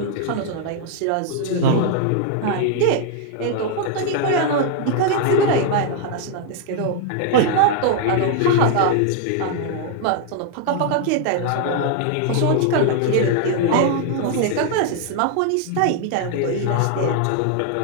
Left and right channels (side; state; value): both; different; correlation 0.00